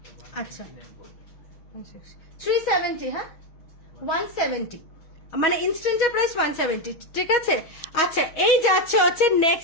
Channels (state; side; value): late; right; 6.3 ms